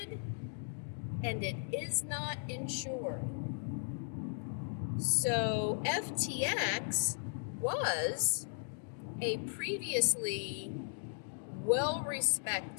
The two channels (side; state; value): right; silent; digital silence